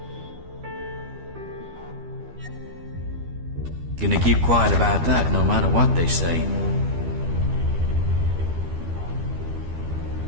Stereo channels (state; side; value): late; left; 12 ms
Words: Gonna keep quiet about that no matter what they say.